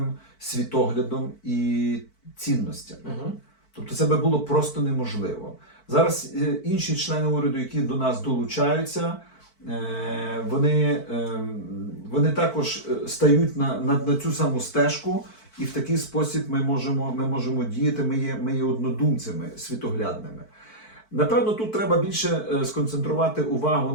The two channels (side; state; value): right; late; 4.5 ms